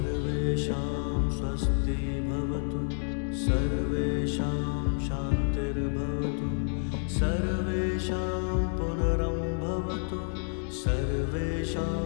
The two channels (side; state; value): right; silent; digital silence